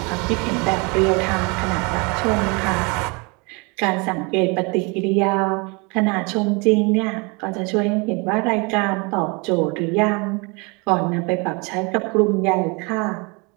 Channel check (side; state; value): left; quieter; 29.8 dB